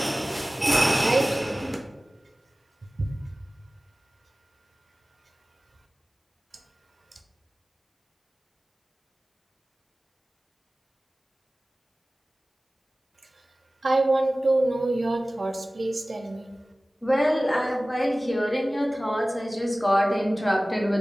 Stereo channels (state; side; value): normal; both; correlation 0.97